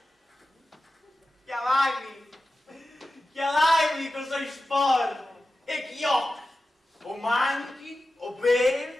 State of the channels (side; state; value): both; normal; correlation 0.93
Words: chiamai cosa sporco, e chiocchi, o manchi, o